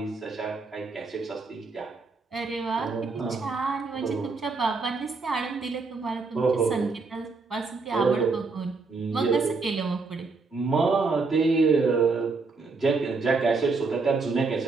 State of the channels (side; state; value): left; quieter; 4.1 dB